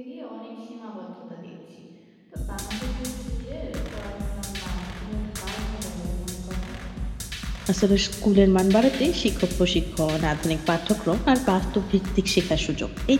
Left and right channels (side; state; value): both; identical; correlation 1.00